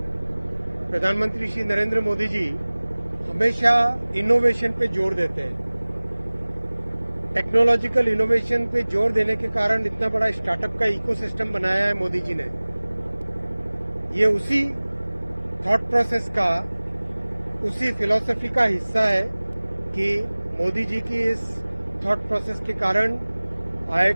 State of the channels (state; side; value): inverted; both; correlation -1.00